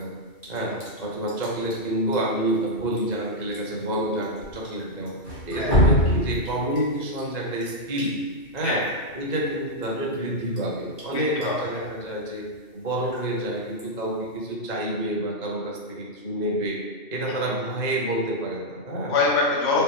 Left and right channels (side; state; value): right; late; 2.7 ms